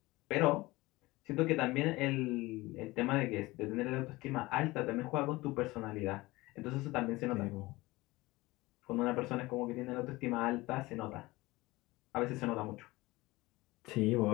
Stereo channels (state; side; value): quieter; right; 20.6 dB